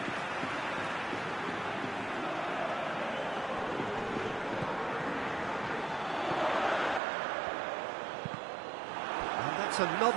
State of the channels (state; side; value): drops out; left; at 7.0 s